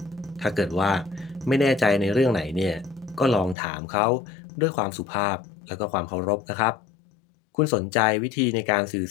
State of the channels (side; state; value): right; drops out; at 3.6 s